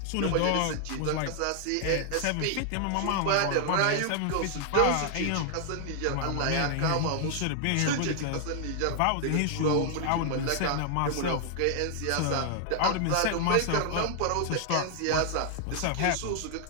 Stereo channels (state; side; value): different; both; correlation 0.00